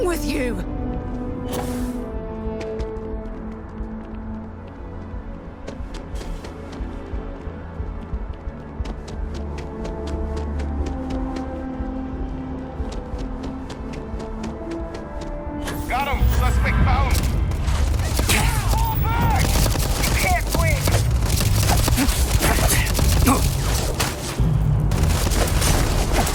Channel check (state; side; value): identical; both; correlation 1.00